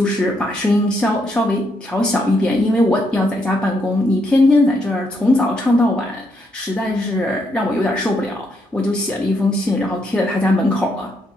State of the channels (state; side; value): normal; both; correlation 0.76